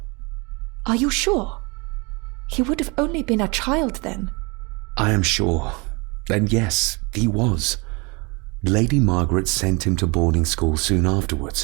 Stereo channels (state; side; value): quieter; left; 28.5 dB